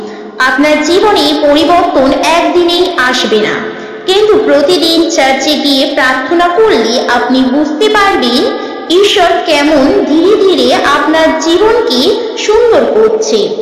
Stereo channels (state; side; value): identical; both; correlation 1.00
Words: আপনার জীবনে পরিবর্তন একদিনেই আসবে না, কিন্তু প্রতিদিন চার্চে গিয়ে প্রার্থনা করলে আপনি বুঝতে পারবেন ঈশ্বর কেমন ধীরে ধীরে আপনার জীবনকে সুন্দর করছে।